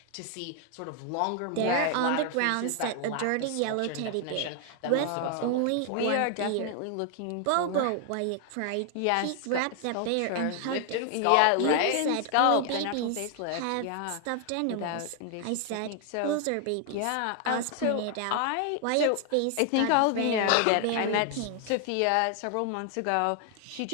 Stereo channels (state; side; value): different; both; correlation 0.00